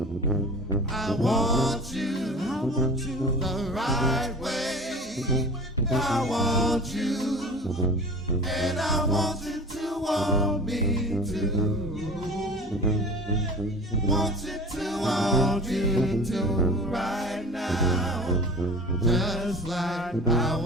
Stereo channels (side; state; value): both; normal; correlation 0.39